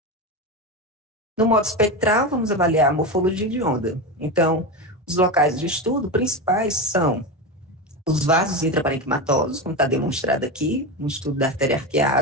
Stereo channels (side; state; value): both; normal; correlation 0.19